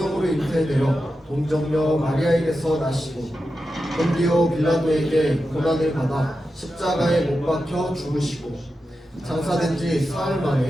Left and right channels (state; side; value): normal; both; correlation 0.90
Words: 잉태되어 동정녀 마리아에게서 나시고 본디오 빌라도에게 고난을 받아 십자가에 못 박혀 죽으시고 장사된 지 사흘